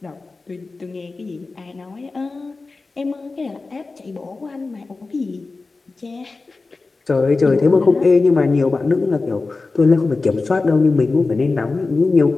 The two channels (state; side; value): quieter; right; 3.8 dB